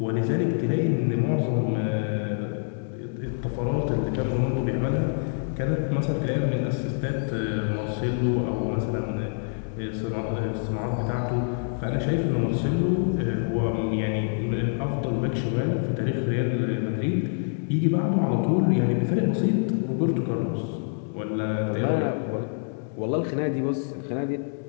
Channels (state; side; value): silent; right; 61 dB below the other